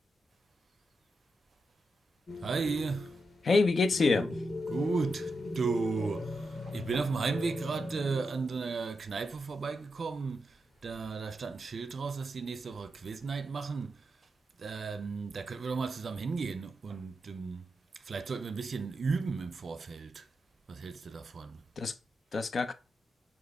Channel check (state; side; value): normal; both; correlation 0.86